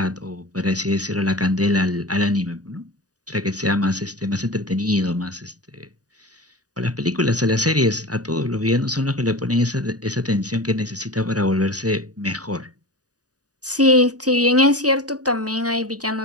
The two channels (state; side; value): late; left; 0.68 ms